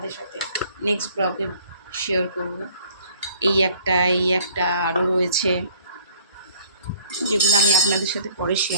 সাথে নেক্সট ব্লগে শেয়ার করব। এই একটা, এই একটা, আরও রয়েছে যেগুলো আমি আপনাদের সাথে পরে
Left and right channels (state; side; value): inverted; both; correlation -0.55